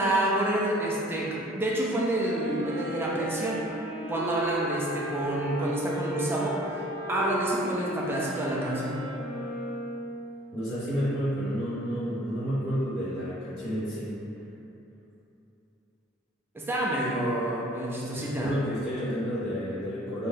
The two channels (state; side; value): normal; both; correlation 0.52